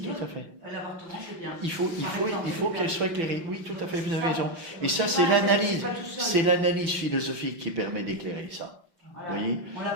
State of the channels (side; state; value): left; late; 5.7 ms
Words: tout à fait. L'avortement, c'est bien. Il faut qu'elle soit éclairée. Oui, tout à fait, vous avez raison. Et ça, c'est l'analyse philosophique qui permet d'éclairer ça. Voilà. Vous voyez, On l'a